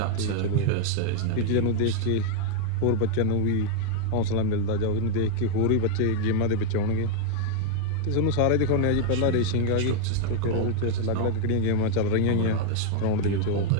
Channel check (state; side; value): different; both; correlation 0.00